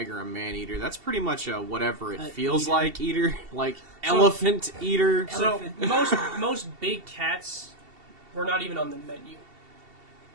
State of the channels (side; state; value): left; late; 2.7 ms